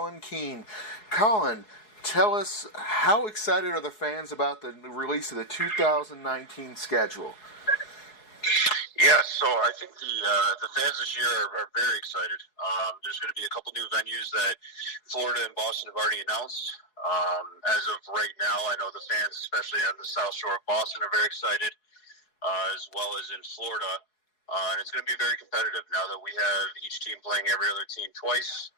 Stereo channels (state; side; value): late; right; 4.7 ms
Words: Keane. Colin, tell us, how excited are the fans about the release of the 2019 schedule? Yeah, so I think the fans this year are very excited. There's going to be a couple new venues that Florida and Boston have already announced. As of right now, I know the fans, especially on the South Shore of Boston, are very excited, as well as in Florida. And it's going to be very competitive now that we have each team playing every other team twice.